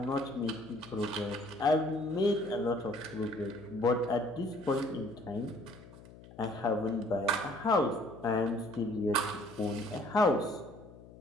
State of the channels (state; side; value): noise; left; hum, 19 dB below the sound